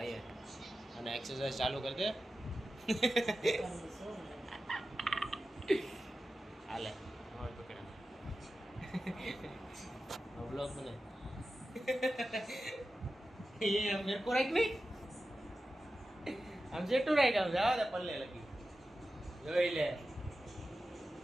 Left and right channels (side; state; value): both; normal; correlation 0.93